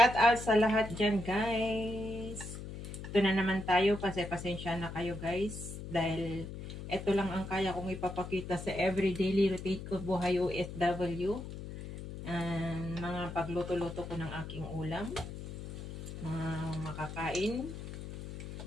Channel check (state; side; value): noise; left; hum, 9 dB below the sound